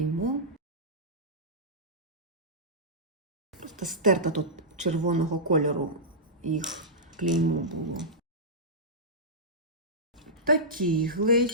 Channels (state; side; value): normal; both; correlation -0.14